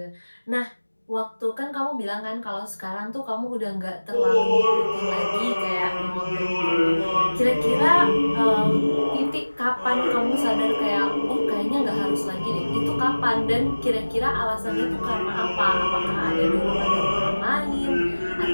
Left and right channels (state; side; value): inverted; both; correlation -1.00